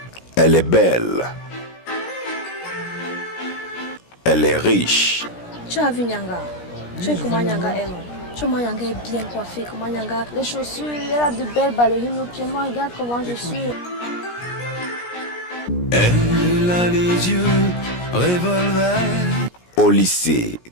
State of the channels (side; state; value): right; late; 17 ms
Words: Elle est belle. Elle est riche. Tu as vu Nyanga? Tu sais comment Nyanga aime? Tu vois, Nyanga est bien coiffée. Comment Nyanga, les chaussures, elle a de belles ballerines aux pieds. Moi, regarde comment je suis. Elle a les yeux revolver. Au lycée,